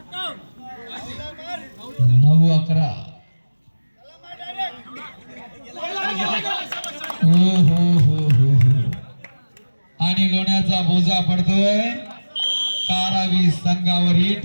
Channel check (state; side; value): inverted; both; correlation -1.00